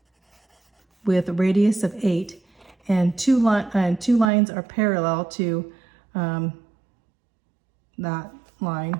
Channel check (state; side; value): drops out; left; at 4.3 s